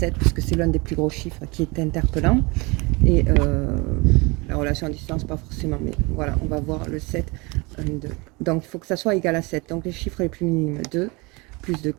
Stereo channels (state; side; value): quieter; left; 26.5 dB